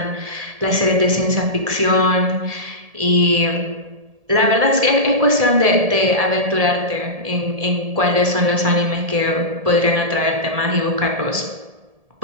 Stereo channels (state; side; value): late; left; 1.7 ms